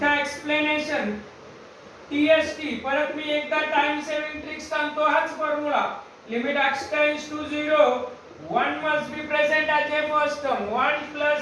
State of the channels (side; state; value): both; identical; correlation 1.00